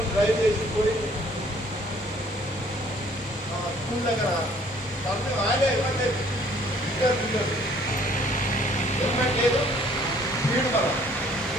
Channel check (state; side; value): normal; both; correlation 0.59